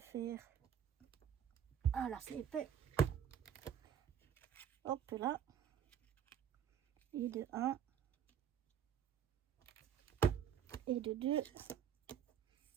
Ah là, c'est épais. Hop là. Et de 1. Et de 2.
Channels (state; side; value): quieter; left; 8.7 dB